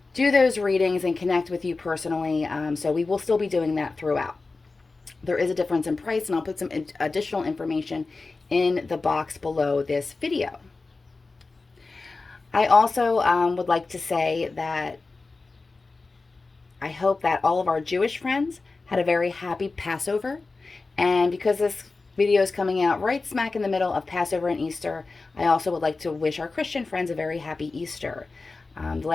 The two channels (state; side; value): quieter; right; 3.8 dB